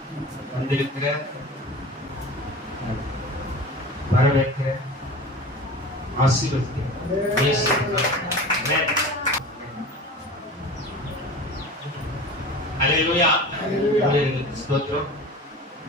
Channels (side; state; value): both; normal; correlation 0.36